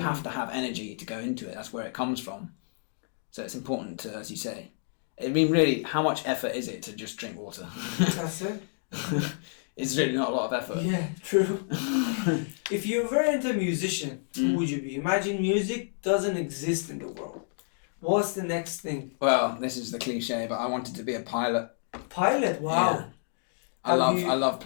have to have energy to go into it. That's where it comes from. So it's important to, as you say, I mean, really, how much effort is it to just drink water? That's it. It's really not a lot of effort. Yeah, true. If you were into a musician, who would you be? Imagine music doesn't exist in the world. What's the next thing? Well, this is the cliche, but I wanted to be a pilot. Pilot? Wow. Yeah. I love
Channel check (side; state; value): right; silent; digital silence